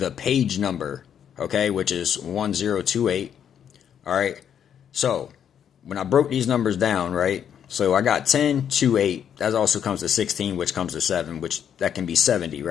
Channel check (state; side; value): quieter; right; 8.8 dB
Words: page number, okay, which is 1028. All right. So, when I broke these numbers down, right? So, I got 10 to 8. That also comes to 16, which comes to 7, which that can be 70,